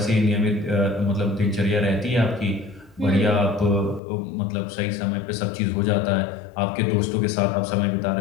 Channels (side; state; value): right; drops out; at 4.0 s